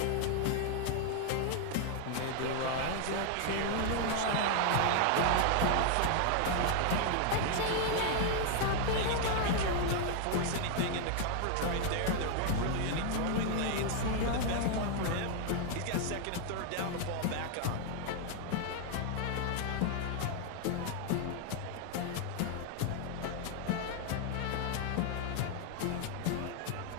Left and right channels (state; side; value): different; both; correlation 0.00